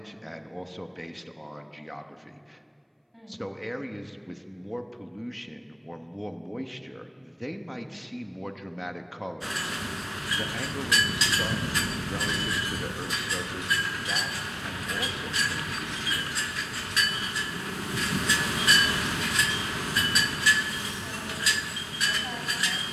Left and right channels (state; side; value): identical; both; correlation 1.00